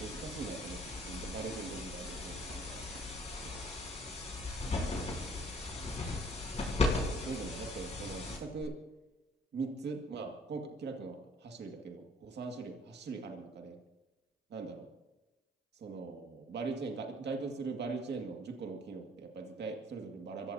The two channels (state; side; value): normal; both; correlation 0.58